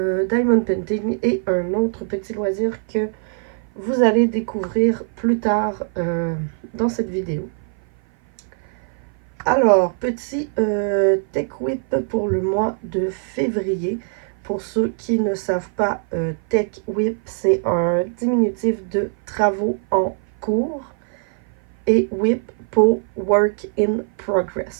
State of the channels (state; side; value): silent; left; 55 dB below the other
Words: Painting et un autre petit loisir que vous allez découvrir plus tard dans cette vidéo. Alors, petit Tech Whip pour le mois de février. Pour ceux qui ne savent pas, Tech Whip, c'est un diminutif de travaux en cours et Whip pour Work in